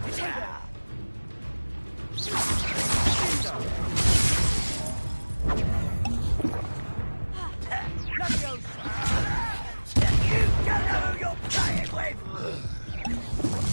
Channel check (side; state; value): both; inverted; correlation -1.00